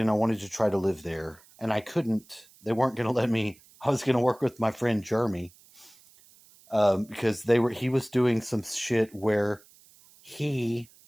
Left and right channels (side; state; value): right; noise; hiss, 27 dB below the sound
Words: I wanted to try to live there, and I couldn't. They weren't going to let me. I was going to work with my friend Jeremy, because he was doing some shit where he